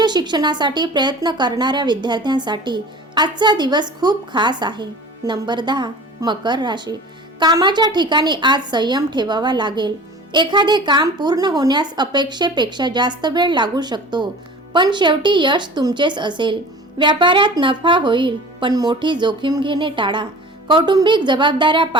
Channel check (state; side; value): normal; both; correlation 0.41